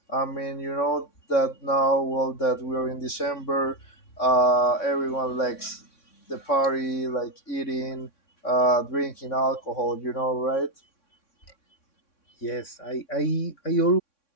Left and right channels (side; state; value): right; late; 3.6 ms